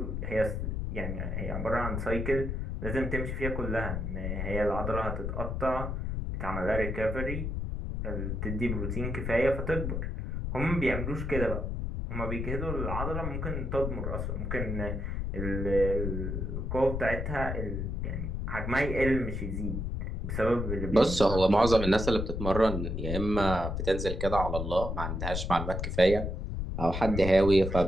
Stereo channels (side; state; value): left; noise; rumble, 3 dB below the sound